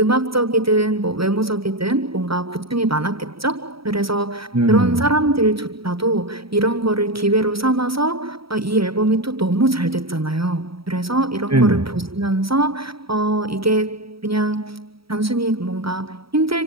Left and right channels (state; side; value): late; left; 0.75 ms